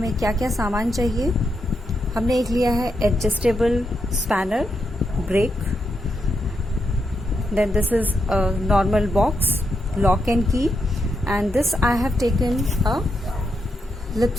क्या क्या सामान चाहिए। हमने एक लिया है adjustable spanner, break, then this is a normal box, lock and key, and this I have taken a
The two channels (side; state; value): both; normal; correlation 0.83